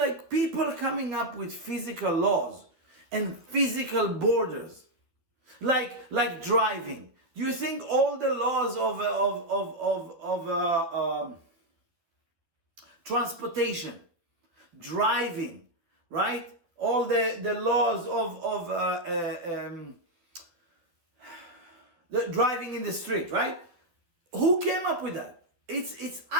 people coming up with physical laws and physical borders, like driving. Do you think all the laws of transportation, driving, right? All the laws of the driving in the street, right? Who came up with that? It's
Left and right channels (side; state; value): left; late; 12 ms